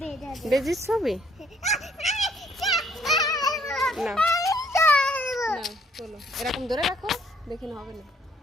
বেজির ছবি না, চলো এরকম ধরে রাখো, দেখি না হবে না।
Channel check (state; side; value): normal; both; correlation 0.65